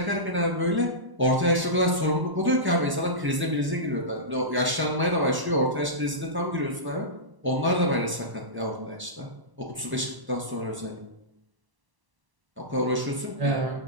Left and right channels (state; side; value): late; left; 1.1 ms